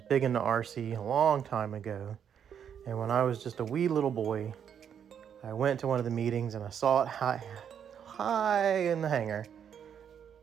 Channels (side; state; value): left; quieter; 8.3 dB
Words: big into RC a long time ago. And when I was just a wee little boy, I went to one of the meetings and I saw it high in the hangar,